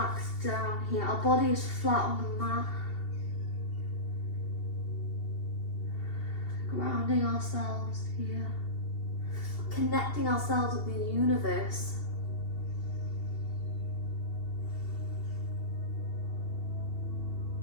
down here. Our body is flat on the mat. Grounding ourselves here. Connecting ourselves with the universe.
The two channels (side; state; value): right; late; 2.7 ms